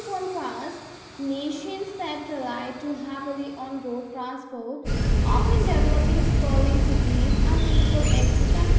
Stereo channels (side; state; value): both; identical; correlation 1.00